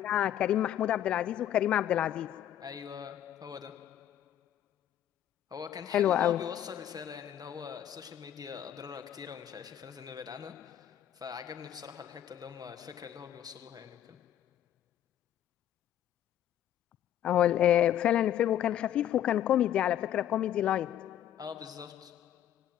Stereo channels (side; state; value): right; quieter; 11.1 dB